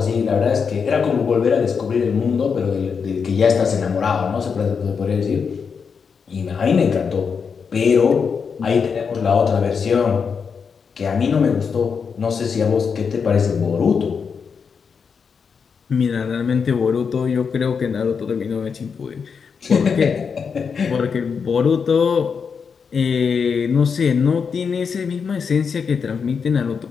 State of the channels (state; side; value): quieter; right; 6.0 dB